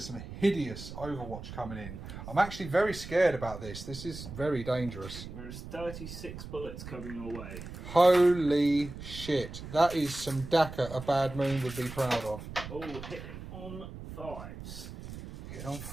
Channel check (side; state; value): right; noise; rumble, 11 dB below the sound